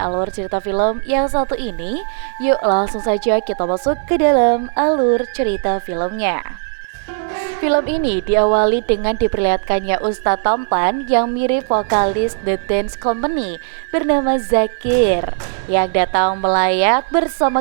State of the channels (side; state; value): left; silent; 60 dB below the other